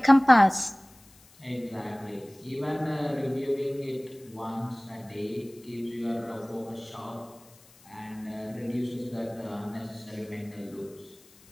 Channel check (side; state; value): left; noise; hiss, 26 dB below the sound